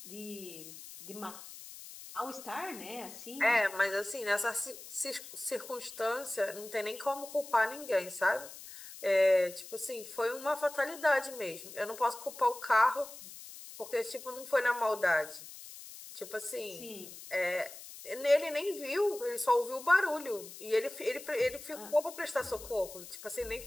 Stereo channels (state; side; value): noise; left; hiss, 14 dB below the sound